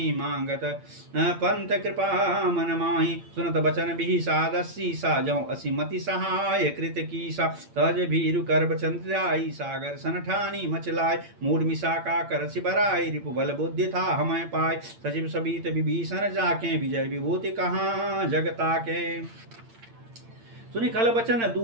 मांगत पंत कृपा मन माहि सुनत बचन बिहि सादसी सा जौ असिमति सहाय कृत कीसा तज भीरु कर चंद्राई सागर सन ठानी मचलाय मूड मिसाका कर सिबराई रिपु बल बुद्धि था हमें पाय सचिव सबीत विभीषण जाके विजय विभूति कहाँ जगता के सुनि खल बचन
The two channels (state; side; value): late; left; 8.8 ms